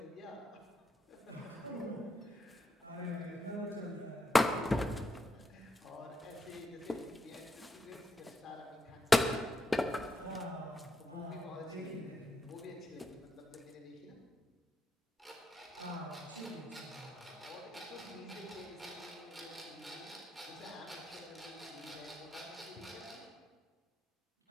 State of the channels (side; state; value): both; normal; correlation 0.81